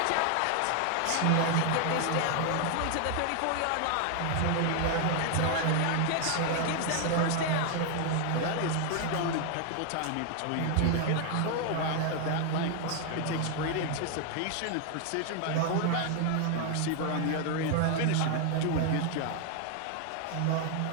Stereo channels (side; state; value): both; different; correlation 0.00